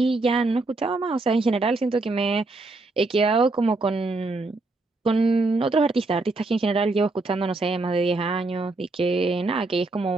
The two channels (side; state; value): left; quieter; 3.2 dB